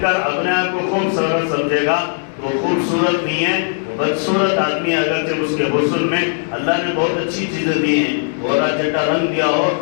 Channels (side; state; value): right; silent; digital silence